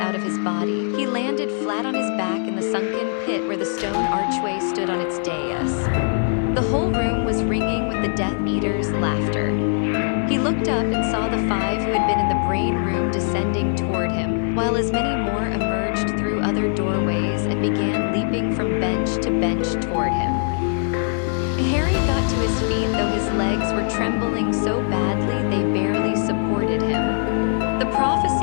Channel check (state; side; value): silent; right; digital silence